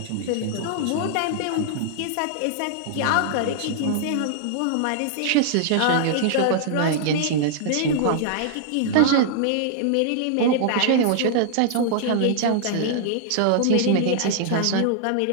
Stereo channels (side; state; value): both; different; correlation -0.01